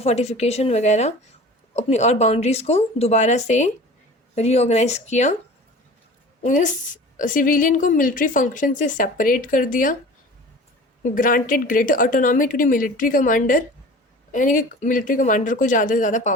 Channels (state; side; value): normal; both; correlation 0.41